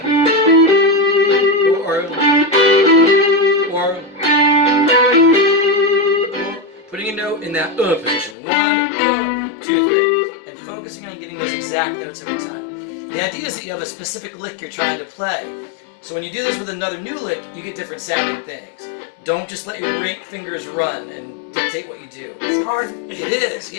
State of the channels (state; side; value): drops out; right; at 8.3 s